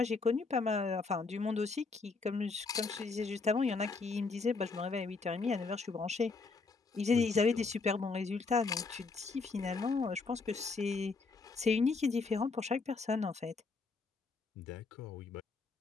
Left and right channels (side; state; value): right; quieter; 4.2 dB